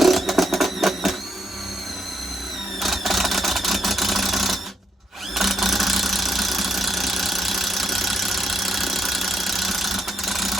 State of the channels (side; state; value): both; normal; correlation 0.77